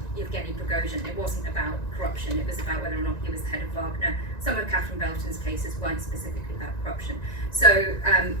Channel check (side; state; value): right; late; 1.9 ms